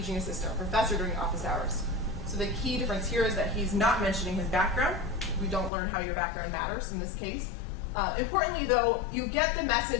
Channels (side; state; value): right; drops out; at 5.7 s